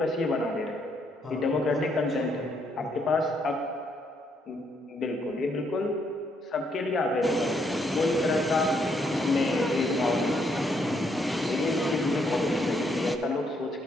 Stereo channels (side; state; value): both; normal; correlation 0.73